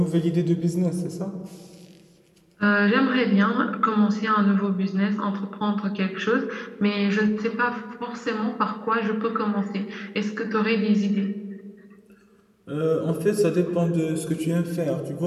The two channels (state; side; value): identical; both; correlation 1.00